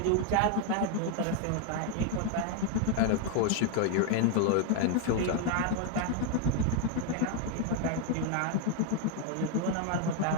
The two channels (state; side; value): different; both; correlation 0.01